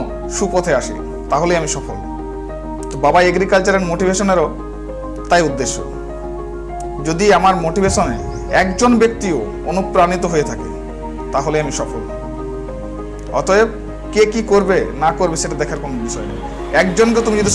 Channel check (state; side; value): identical; both; correlation 1.00